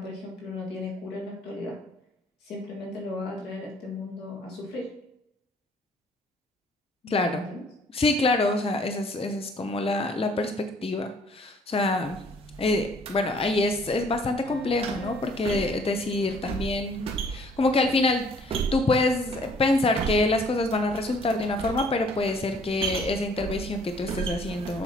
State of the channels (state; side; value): normal; both; correlation 0.59